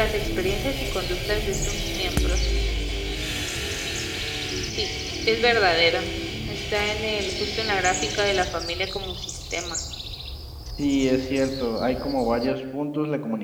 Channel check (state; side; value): identical; both; correlation 1.00